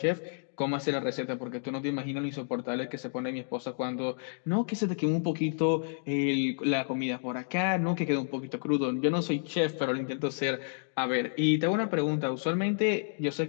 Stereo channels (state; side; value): silent; right; digital silence